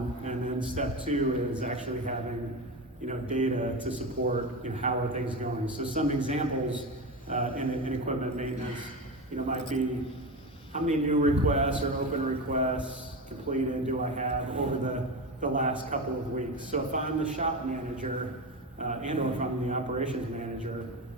and then step two is actually having, data to support, how are things going. So some examples in equipment maintenance, might be how many new requests or open requests completed do I have over the last couple of weeks. So if I'm the shop manager and or if I'm the operations manager,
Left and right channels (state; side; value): normal; both; correlation 0.21